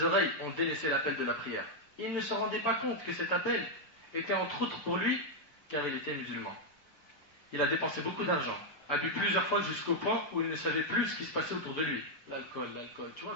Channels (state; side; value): late; right; 6.9 ms